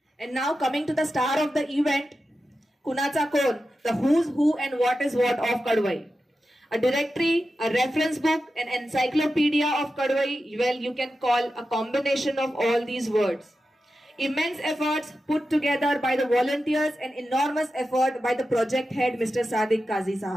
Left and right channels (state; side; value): normal; both; correlation 0.91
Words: And now coming to the star of the event, Kunacha Kon, the who's who and what is what of Kadwai. A directory, a reference book, an encyclopedia of Kadwai, well, you can call a combination of all these words. Immense efforts put together by the volunteers and enormous effort by the project head, Mr. Sadiq Qazi